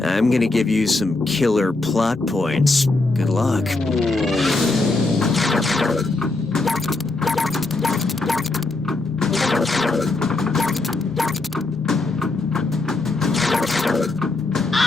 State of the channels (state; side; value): quieter; right; 3.2 dB